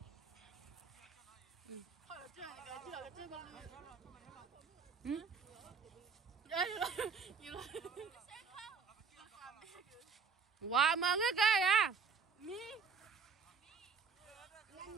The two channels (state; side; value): quieter; left; 5.8 dB